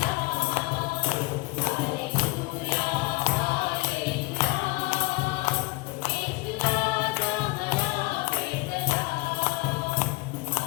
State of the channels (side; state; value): right; quieter; 23.4 dB